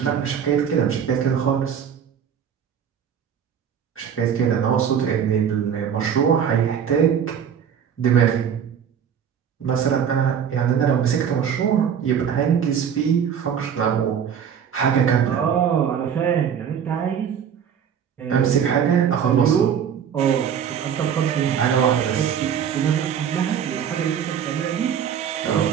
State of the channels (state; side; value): quieter; left; 8.1 dB